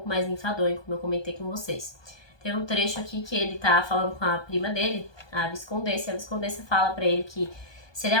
mais enfadonho, como eu comentei com vocês. Tem um trecho aqui que ele tá falando com a prima dele, a Viscondessa, e a Viscondessa fala pra ele que se ele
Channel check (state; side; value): late; right; 1.2 ms